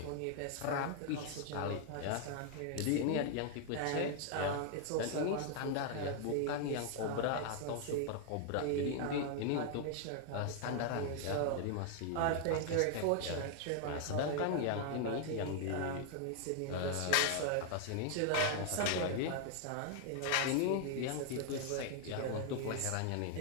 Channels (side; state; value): both; different; correlation 0.00